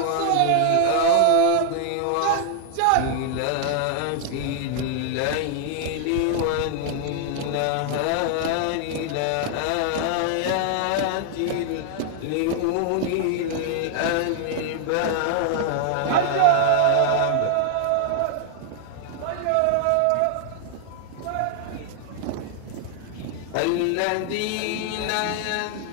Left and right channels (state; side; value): different; both; correlation 0.00